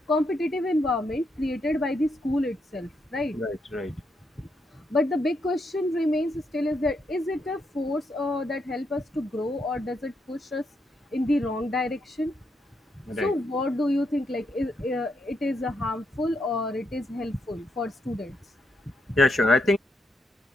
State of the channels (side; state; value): both; normal; correlation 0.79